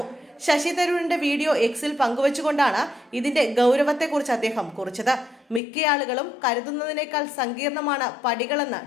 ശശി തരൂരിന്റെ വീഡിയോ എക്സിൽ പങ്കുവച്ചുകൊണ്ടാണ് ഇതിന്റെ ഗൗരവത്തെക്കുറിച്ച് അദ്ദേഹം കുറിച്ചത്. മിക്ക ആളുകളും കരുതുന്നതിനേക്കാൾ സങ്കീർണമാണ് പടികളെന്ന്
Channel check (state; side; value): drops out; right; at 5.6 s